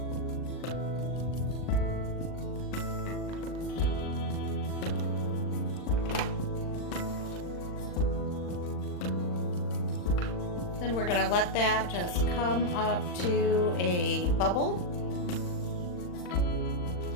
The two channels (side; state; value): right; late; 39 ms